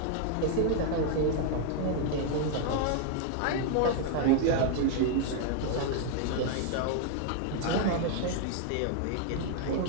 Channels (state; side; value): different; both; correlation 0.00